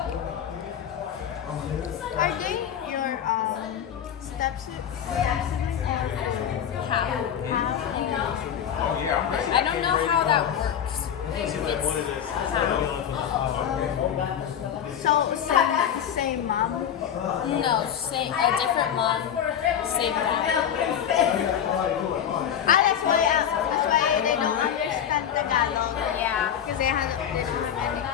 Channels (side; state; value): right; quieter; 9.1 dB